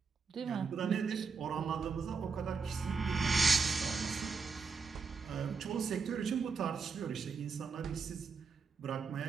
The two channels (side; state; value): left; quieter; 5.1 dB